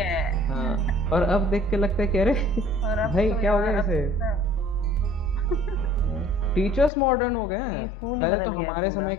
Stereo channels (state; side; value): drops out; right; at 6.9 s